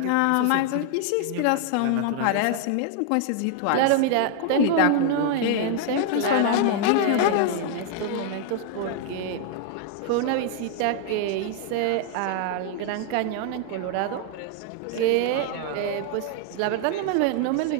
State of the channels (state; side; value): different; both; correlation 0.00